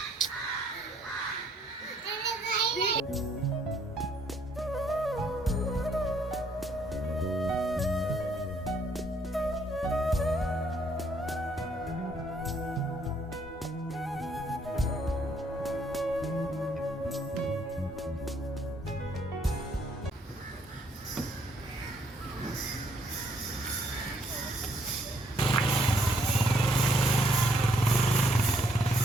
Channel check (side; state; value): both; normal; correlation 0.68